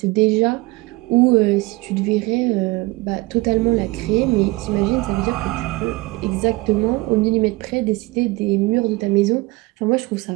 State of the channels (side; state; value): left; quieter; 22.0 dB